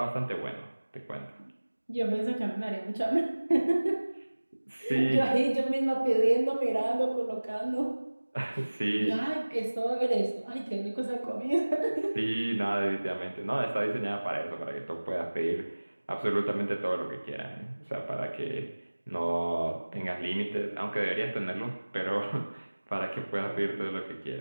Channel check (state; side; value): inverted; both; correlation -1.00